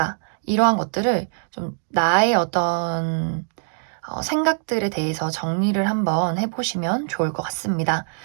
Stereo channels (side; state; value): left; silent; digital silence